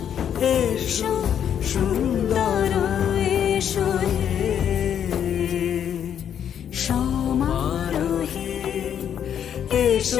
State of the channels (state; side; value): quieter; right; 9.0 dB